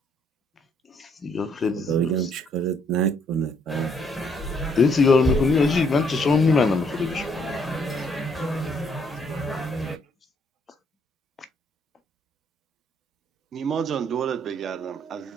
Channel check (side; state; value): both; normal; correlation 0.69